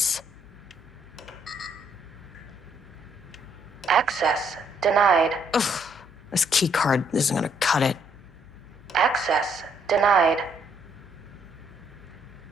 Access denied. Ugh, this key card isn't gonna cut it. Access denied.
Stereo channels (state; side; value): noise; left; hum, 25 dB below the sound